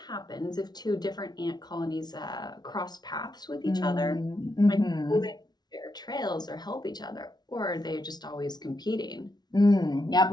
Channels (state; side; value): late; right; 0.19 ms